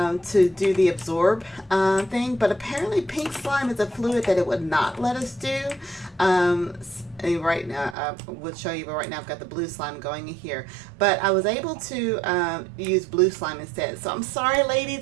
do the absorb thing, but apparently pink slime is a fluid that it would not let us do. Right now, I would show you, but right now I've got the blue slime going in here. But I was able to use blue slime instead. So I'm sorry,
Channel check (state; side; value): drops out; left; at 8.0 s